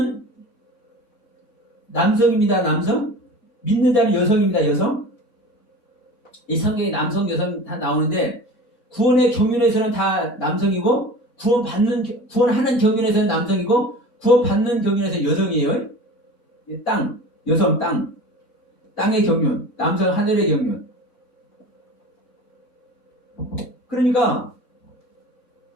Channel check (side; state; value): both; normal; correlation 0.36